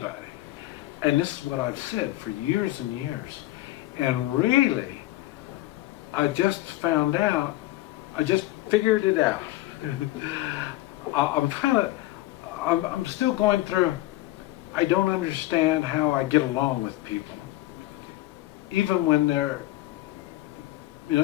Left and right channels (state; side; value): quieter; right; 16.9 dB